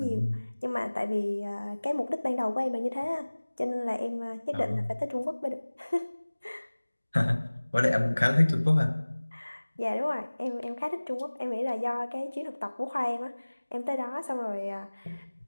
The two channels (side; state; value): both; inverted; correlation -1.00